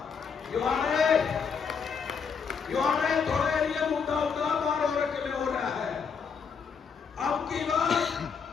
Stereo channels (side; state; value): right; quieter; 6.1 dB